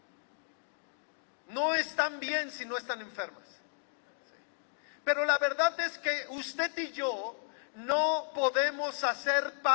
no están bien si no están enfermas. Pero la verdad es que usted y yo no podemos hacer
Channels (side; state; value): right; silent; digital silence